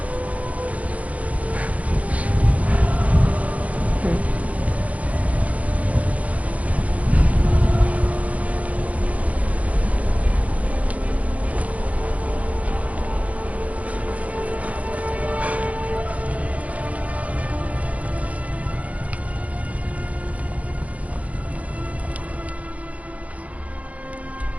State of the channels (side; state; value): left; late; 0.067 ms